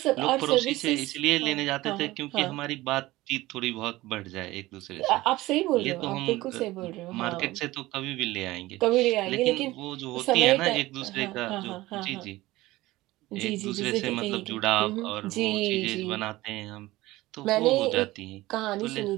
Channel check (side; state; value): left; quieter; 18.4 dB